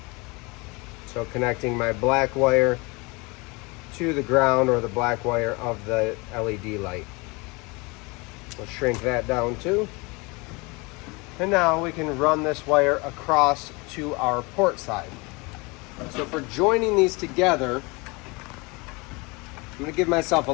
So connecting my black wire to the ground, or the black wire of the LED light. We'll shrink that down too. And now we can run this wire across to our port side. So for joining these together, I'm going to give myself a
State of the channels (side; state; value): right; quieter; 26.9 dB